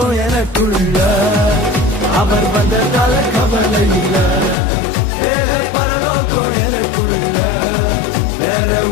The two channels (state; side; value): drops out; right; at 4.5 s